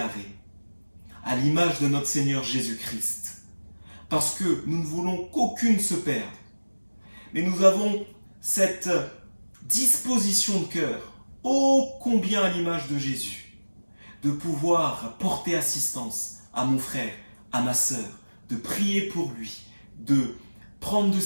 à l'image de notre Seigneur Jésus-Christ. Parce que nous ne voulons qu'aucune se perde. Mais nous avons cette disposition de cœur, ô combien à l'image de Jésus, de pouvoir porter assistance à mon frère, à ma sœur, de prier pour lui, de prendre de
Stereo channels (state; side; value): inverted; both; correlation -1.00